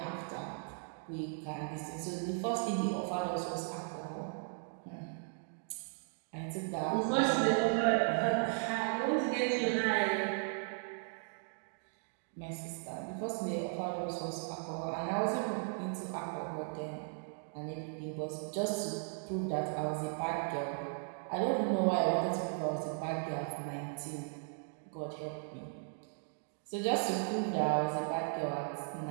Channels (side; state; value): left; silent; 53 dB below the other